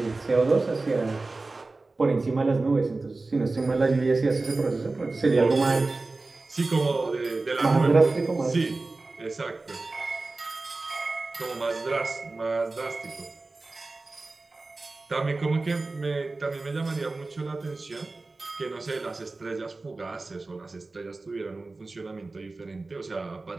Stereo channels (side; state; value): left; quieter; 3.4 dB